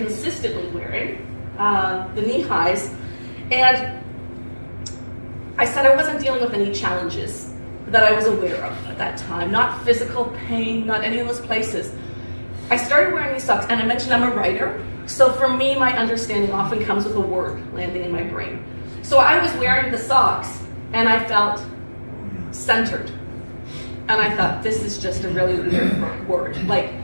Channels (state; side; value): inverted; both; correlation -1.00